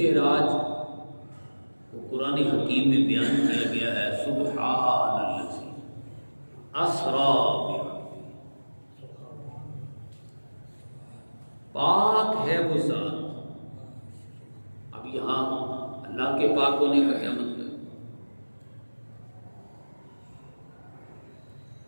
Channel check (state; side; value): inverted; both; correlation -1.00